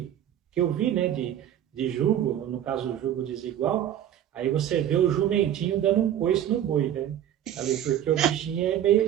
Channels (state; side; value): quieter; left; 10.9 dB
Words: eu vi, né, de jugo, no caso o jugo desigual, aí você vê o jumentinho dando um coice no boi, né? Ali, porque o bichinho é